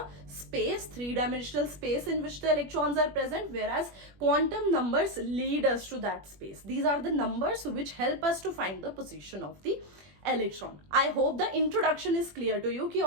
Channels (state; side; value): late; left; 21 ms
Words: space, 3-dimensional space in which the electrons are present, whereas quantum numbers lead us to that space. These are the numbers which help us to find the position of the electron. I hope the introduction is clear to you कि